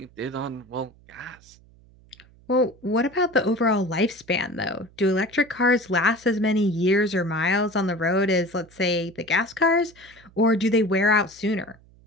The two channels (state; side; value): noise; right; hum, 27 dB below the sound